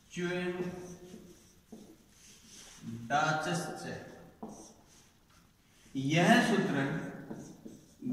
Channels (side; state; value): both; identical; correlation 1.00